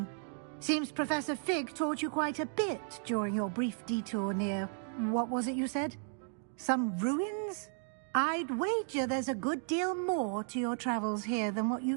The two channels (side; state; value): left; silent; 55 dB below the other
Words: Seems Professor Fig taught you quite a bit during your brief detour near... what was it you said? Some ruins? I'd wager there's a good deal more to your travels here than what